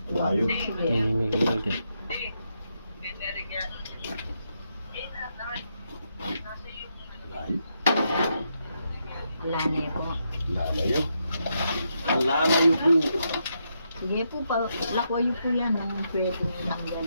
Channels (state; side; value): inverted; both; correlation -0.81